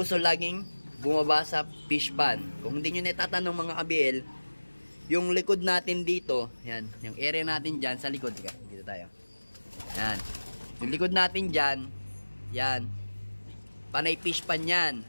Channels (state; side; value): inverted; both; correlation -1.00